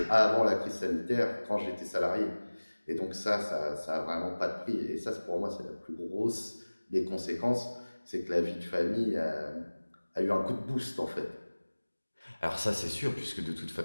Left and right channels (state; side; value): inverted; both; correlation -1.00